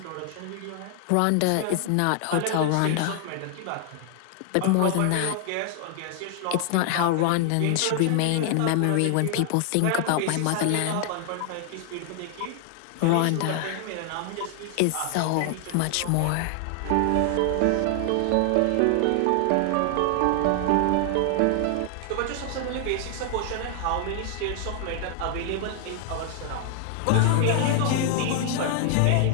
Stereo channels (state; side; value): different; both; correlation 0.00